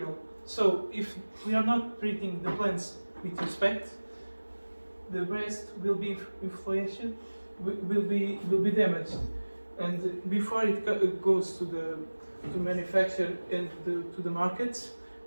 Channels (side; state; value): both; inverted; correlation -1.00